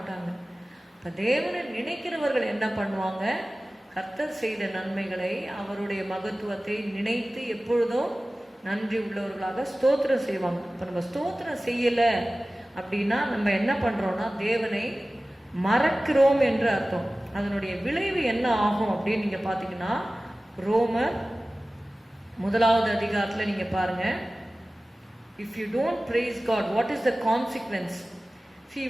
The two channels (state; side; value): normal; both; correlation 0.97